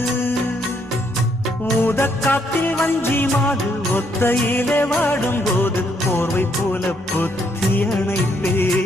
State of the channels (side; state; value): both; normal; correlation 0.72